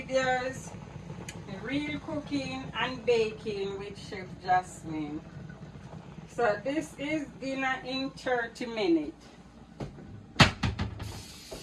Real Cooking and Baking with Chef Jasmine. So this is dinner in 30 minutes.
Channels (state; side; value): identical; both; correlation 1.00